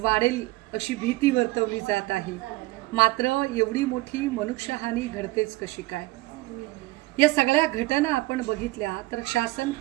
अशी भीती वर्तवली जात आहे। मात्र एवढी मोठी मनुष्यहानी घडतेच कशी काय? या सगळ्या घटना आपण बघितल्या तर शासन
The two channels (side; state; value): left; quieter; 20.3 dB